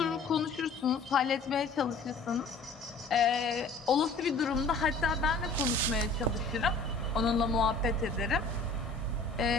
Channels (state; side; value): quieter; right; 3.6 dB